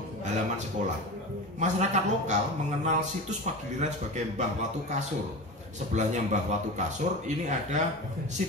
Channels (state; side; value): normal; both; correlation 0.28